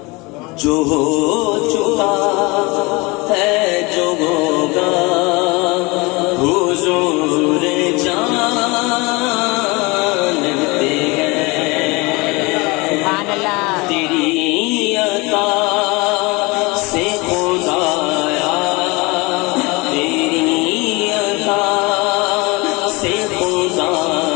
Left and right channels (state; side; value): quieter; right; 25.4 dB